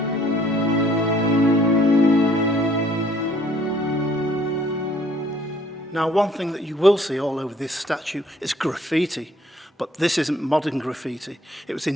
Now, one thing that you will see all over this statue is graffiti, but this isn't modern graffiti. It was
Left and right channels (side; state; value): both; normal; correlation 0.61